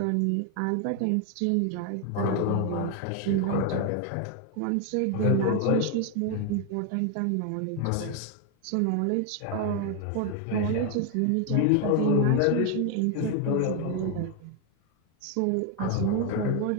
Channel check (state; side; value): different; both; correlation 0.01